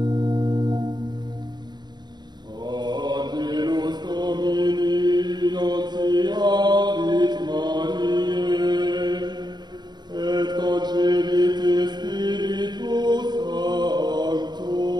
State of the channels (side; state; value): left; late; 0.21 ms